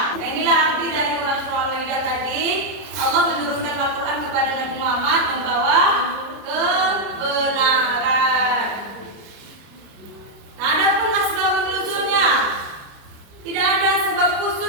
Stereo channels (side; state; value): left; late; 30 ms